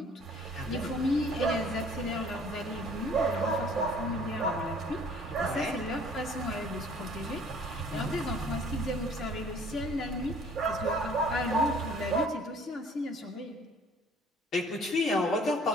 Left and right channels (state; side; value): normal; both; correlation 0.54